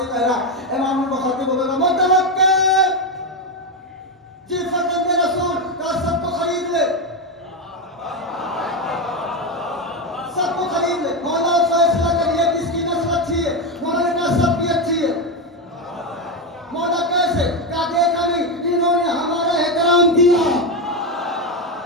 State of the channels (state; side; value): normal; both; correlation 0.10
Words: कह रहा है। इमाम ने बखते बोला मुतवक्किल जी फरजंदे रसूल का सबको खरीद ले, सबको खरीद ले। मौला फैसला करिए किसकी नस्ल अच्छी है। मौला ने कहा सबकी अच्छी है। मौला कैसे? क्या देखा नहीं इन्होंने हमारा एहतराम किया।